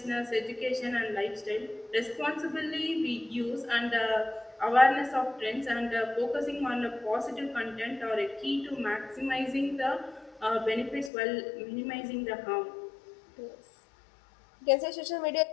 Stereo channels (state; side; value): drops out; right; at 11.1 s